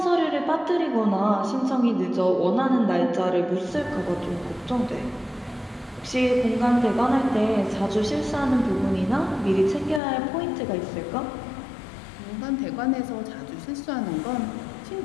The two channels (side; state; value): right; drops out; at 10.0 s